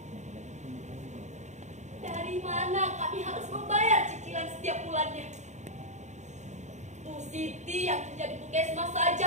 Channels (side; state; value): left; late; 0.34 ms